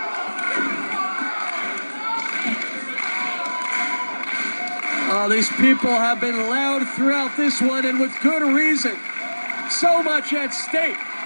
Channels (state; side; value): inverted; both; correlation -1.00